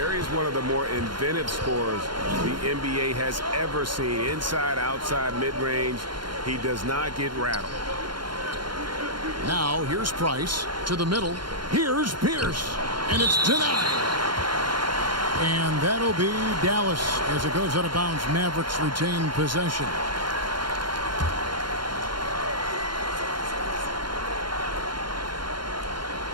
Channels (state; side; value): late; left; 0.72 ms